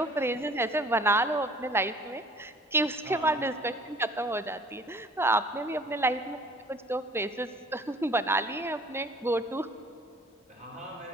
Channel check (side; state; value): both; normal; correlation 0.51